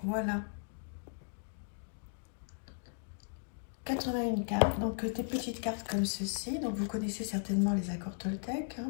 Voilà. 81 cartes, donc des petites cartes comme ceci. Donc vous connaissez certainement les accords Toltec.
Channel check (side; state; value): right; silent; digital silence